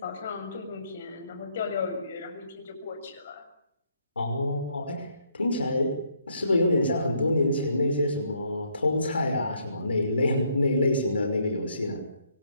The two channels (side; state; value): both; inverted; correlation -0.71